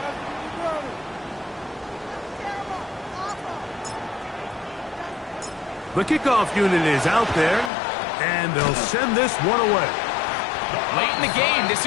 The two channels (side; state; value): right; drops out; at 7.7 s